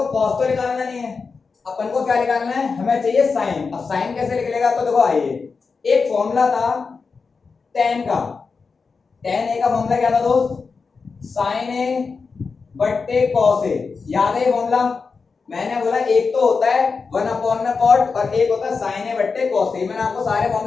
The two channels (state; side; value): quieter; right; 4.8 dB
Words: cos तो निकालना नहीं है, अपन को क्या निकालना है, हमें चाहिए sin। अब sin कैसे निकलेगा, तो देखो आइए, एक फॉर्मूला था tan का, tan a का फॉर्मूला क्या था दोस्त, sin a बट्टे cos a। याद है ये फॉर्मूला? मैंने बोला एक तो होता है 1 में cot और एक होता है sin a बट्टे cos a। मैंने आपको सारे